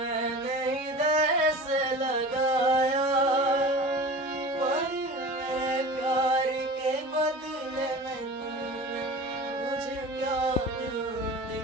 हृदय से लगाया, पर मेरे प्यार के बदले में तूने मुझे क्या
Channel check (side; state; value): both; normal; correlation 0.36